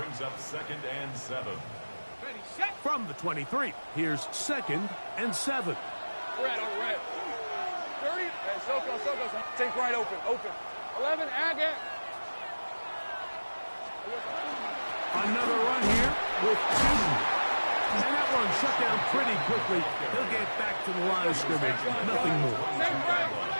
up 2nd and 7. From the 23, here's 2nd and 7. Red. 30. Hey, Soko. Take right open. 11, Agate. Another run here with 2. And that one shut down pretty quickly. He'll get back to the line of scrimmage. Nothing more.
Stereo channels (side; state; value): both; inverted; correlation -1.00